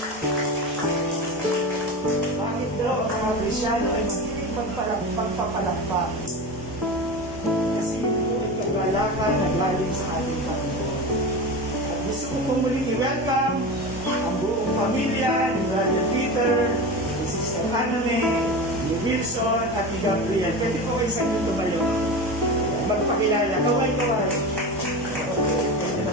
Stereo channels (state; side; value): normal; both; correlation 0.26